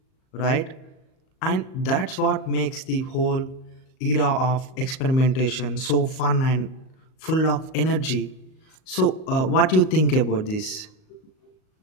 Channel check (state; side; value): late; right; 38 ms